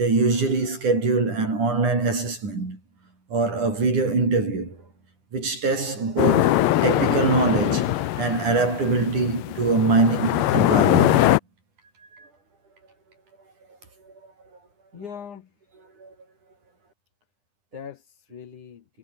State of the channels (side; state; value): left; late; 9.9 ms